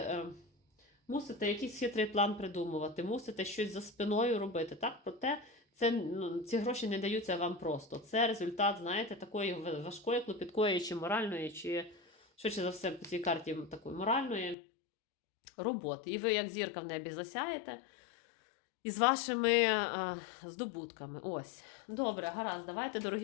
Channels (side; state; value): right; drops out; at 14.6 s